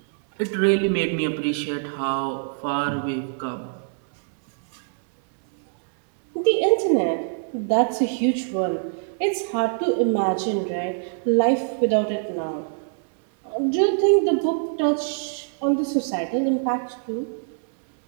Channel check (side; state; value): left; silent; digital silence